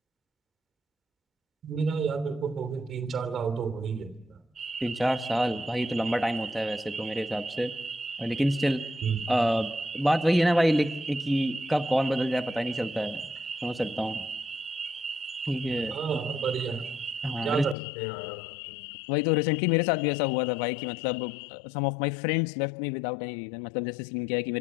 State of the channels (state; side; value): drops out; right; at 17.8 s